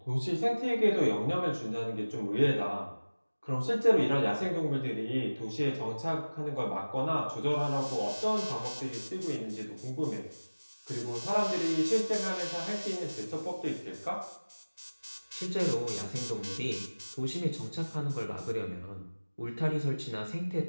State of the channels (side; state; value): both; inverted; correlation -1.00